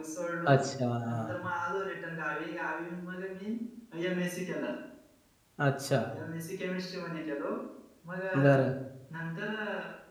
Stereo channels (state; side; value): identical; both; correlation 1.00